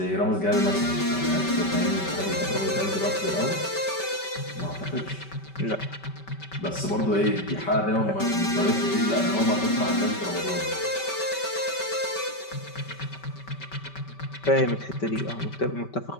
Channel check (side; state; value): right; late; 5.2 ms